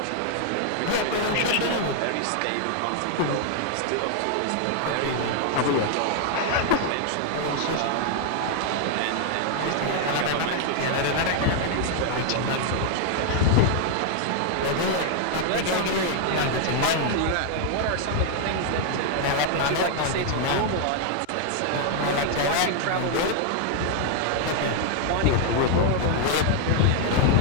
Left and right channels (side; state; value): both; different; correlation 0.00